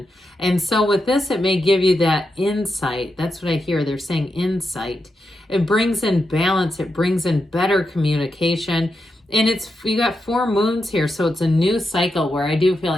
And so with this, it may give you that insight. That's what I hear. They're saying insight. It brings in balance. It brings in better communication. And you got 4 moons here, so it's a new cycle where I do feel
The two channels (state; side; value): normal; both; correlation 0.86